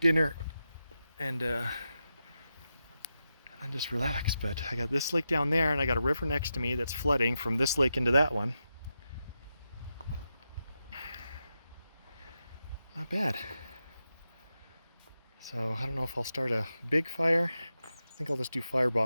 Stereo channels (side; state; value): both; inverted; correlation -0.89